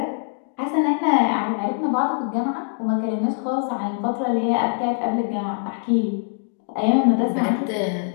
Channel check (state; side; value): silent; right; digital silence